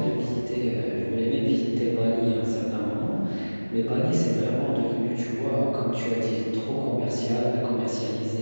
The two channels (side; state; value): both; inverted; correlation -1.00